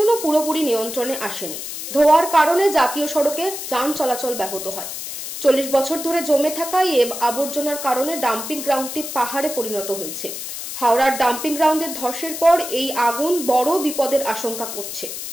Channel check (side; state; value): left; noise; hiss, 7 dB below the sound